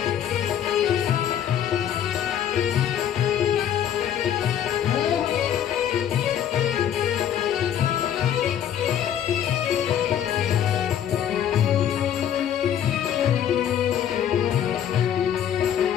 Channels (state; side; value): quieter; right; 9.7 dB